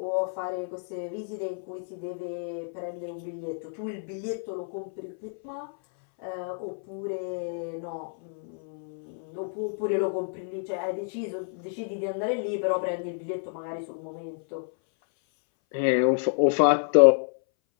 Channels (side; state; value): right; silent; 59 dB below the other